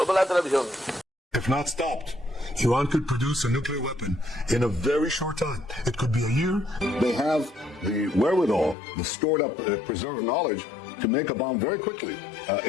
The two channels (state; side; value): drops out; right; at 8.8 s